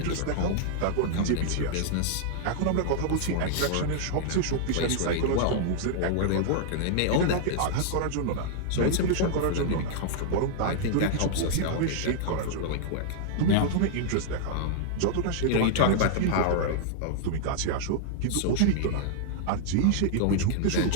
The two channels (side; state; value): both; different; correlation -0.01